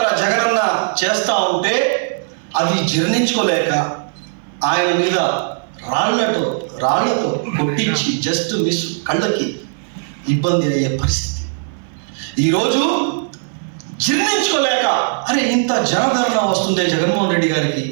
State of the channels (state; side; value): silent; left; 57 dB below the other